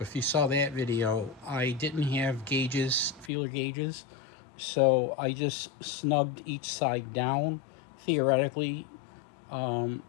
you saw that video, I didn't have gauges, feeler gauges, so I just snugged each side down. Theoretically,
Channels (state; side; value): drops out; right; at 3.3 s